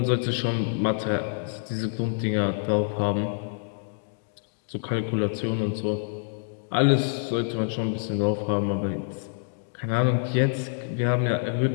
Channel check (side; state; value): right; silent; digital silence